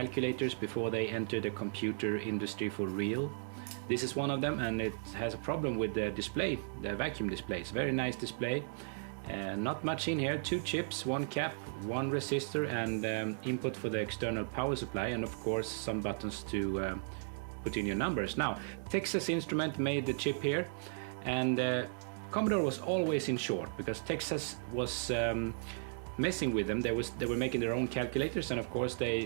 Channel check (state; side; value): silent; left; digital silence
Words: before they entered the computer industry for real? This is one of them, and it has a problem with the display, the vacuum display. It's a very nice display. Not much in here, 2 chips, 1 cap, 1 resistor, and input for the external power supply, and of course some buttons to put in your numbers. Now, Texas Instrument made the chip here, and Commodore was always in short because Texas was messing with them. They were making their own calculators, and of course